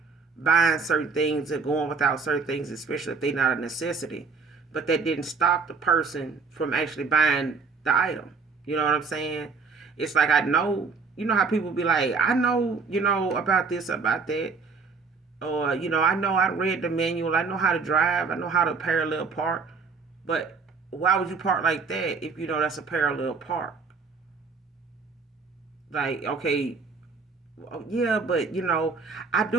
buying certain things or going without certain things, especially if they're not a necessity. But that didn't stop the person from actually buying the item. You know what I'm saying? It's like, I know, how people be like, I know, about this, about that. Or, I know I read the manual. I know how to drive. I know how to parallel park. But why would you park like that if you know that's a parallel park? Like, okay, yeah, but, I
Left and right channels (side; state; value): left; quieter; 4.8 dB